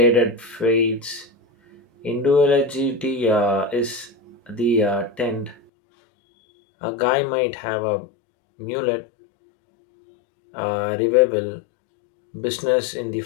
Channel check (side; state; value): right; drops out; at 5.6 s